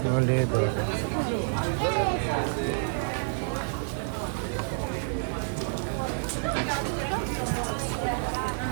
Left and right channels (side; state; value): left; silent; 57 dB below the other